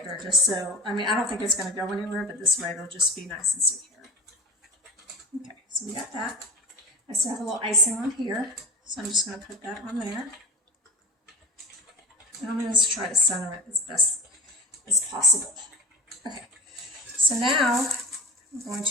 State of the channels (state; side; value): normal; both; correlation 0.33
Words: just so, I don't think it's going to go anywhere, but this way it'll just be nice and secure. Okay, so we got that. I still have a little icing on here, so I'm just going to put that on there. And I'm going to try to center it as best as possible. Okay, so now I'm going